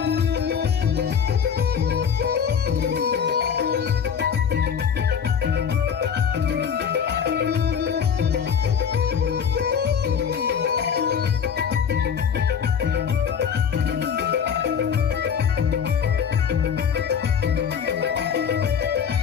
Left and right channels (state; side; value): quieter; right; 7.3 dB